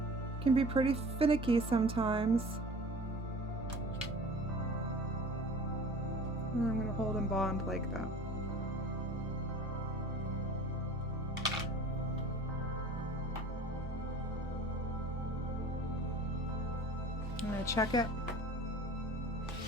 Can be pretty finicky sometimes. And I'm going to hold and bond like that. I'm going to check it,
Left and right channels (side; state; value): both; normal; correlation 0.43